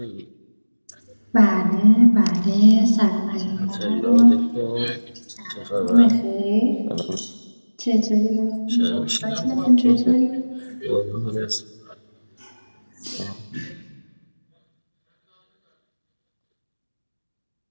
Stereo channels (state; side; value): inverted; both; correlation -1.00